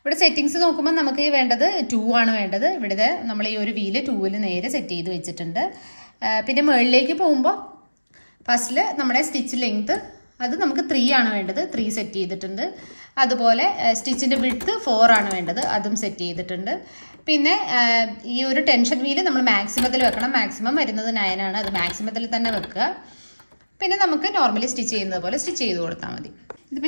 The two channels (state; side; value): inverted; both; correlation -1.00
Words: സെറ്റിങ്സ് നോക്കുമ്പോൾ നമുക്ക് വേണ്ടത് 2 ആണ് വേണ്ടത്. ഇവിടെ നമ്മൾ ഈ ഒരു വീല് 2-ൽ നേരെ സെറ്റ് ചെയ്ത് വെച്ചിട്ടുണ്ട്. പിന്നെ മുകളിലേക്ക് പോകുമ്പോൾ ഫസ്റ്റിൽ നമ്മുടെ സ്റ്റിച്ച് ലെങ്ത് അത് നമുക്ക് 3 ആണ് വേണ്ടത്, 3 സെറ്റ് ചെയ്തിട്ടുണ്ട്. അതുപോലെ സ്റ്റിച്ചിൻ്റെ വിഡ്ത്ത് 4 ആണ് വേണ്ടത്, അതും സെറ്റ് ചെയ്തിട്ടുണ്ട്. പിന്നെ ഈ ഒരു ടെൻഷൻ വീല് നമ്മൾ മാക്സിമത്തിൽ വെക്കണം. മാക്സിമം വരുന്നത് 9 ആണ്, അത് മാക്സിമത്തിൽ തന്നെ വെക്കുക. പിന്നെ നമുക്ക് നോർമലി സ്റ്റിച്ച് ചെയ്യുന്നത് പോലെ സ്റ്റിച്ച് ചെയ്ത് കൊടുത്താൽ മതി.